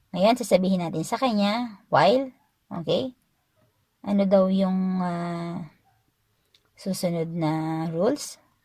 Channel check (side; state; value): both; identical; correlation 1.00